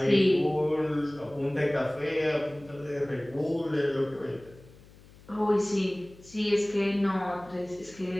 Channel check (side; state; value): left; noise; hum, 23 dB below the sound